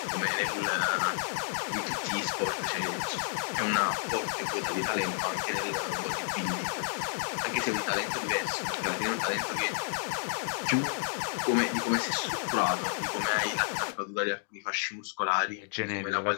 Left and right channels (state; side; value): silent; right; digital silence